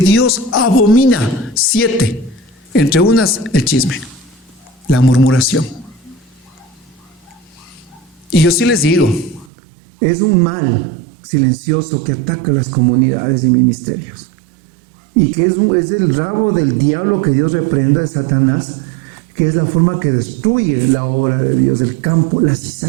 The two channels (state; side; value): drops out; left; at 9.5 s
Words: abomina. 7. Entre unas, el chisme, la murmuración. Y yo sí les digo, es un mal silencioso que ataca las comunidades y ministerios. Y que es el rabo del diablo que Dios reprenda de Satanás, que es la forma que destruye la obra de Dios, el campo, la